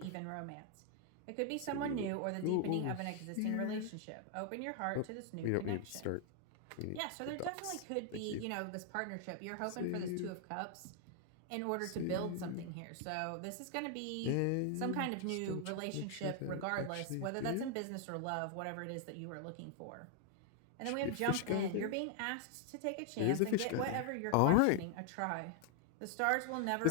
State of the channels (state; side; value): different; both; correlation 0.00